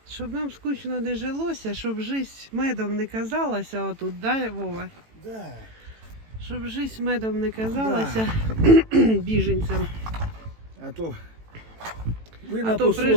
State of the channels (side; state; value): left; late; 18 ms